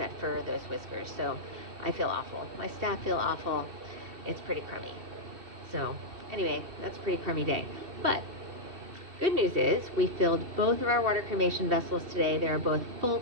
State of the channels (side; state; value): left; late; 2.7 ms